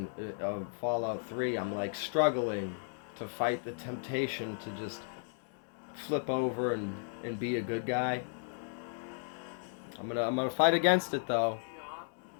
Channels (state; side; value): silent; right; 55 dB below the other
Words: of Fallout 3, I'm like struggling to fight the temptation to just flip over and be a good guy. I'm gonna fight against it though.